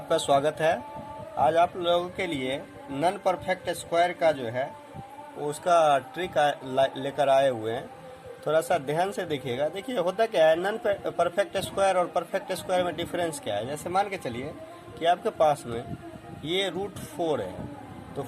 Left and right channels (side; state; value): both; identical; correlation 1.00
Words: स्वागत है। आज आप लोगों के लिए नॉन परफेक्ट स्क्वायर का जो है उसका ट्रिक लेकर आए हुए हैं। थोड़ा सा ध्यान से देखिएगा। देखिए होता क्या है, नॉन परफेक्ट स्क्वायर और परफेक्ट स्क्वायर में डिफरेंस क्या है। जैसे मान के चलिए कि आपके पास में ये रूट 4 है, तो